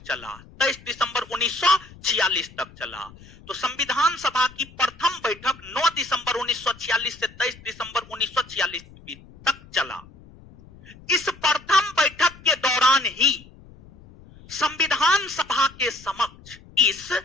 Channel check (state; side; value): noise; left; rumble, 22 dB below the sound